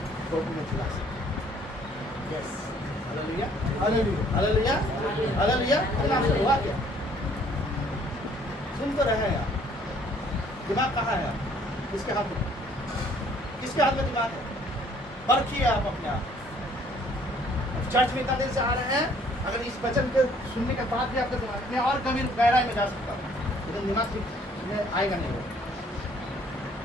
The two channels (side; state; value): both; normal; correlation 0.60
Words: कोर्ट में चला सकते हैं। Yes, hallelujah. Hallelujah. Hallelujah. Hallelujah. आपसे हुआ क्या? सुन तो रहे हैं आप, दिमाग कहाँ है? किसके हाथ में? किसके हाथ में दिमाग है? परखिए आप अपने आप। चर्च में इतना देर से आ रहे हैं, अगर इस वचन के सुनने के बाद भी आपका दिमाग में और कभी गहराई में जा सकता है, लेकिन दिमाग में आएगा नहीं,